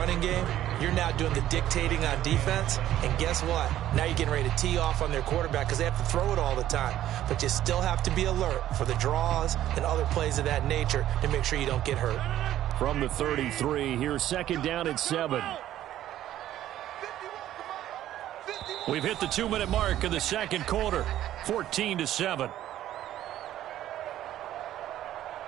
game, you're now doing the dictating on defense. And guess what? Now you're getting ready to tee off on their quarterback because they have to throw it all the time. But you still have to be alert for the draws and other plays of that nature to make sure you don't get hurt. From the 33, here's second down and 7. We've hit the 2-minute mark of the second quarter, 14-7.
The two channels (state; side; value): quieter; left; 12.7 dB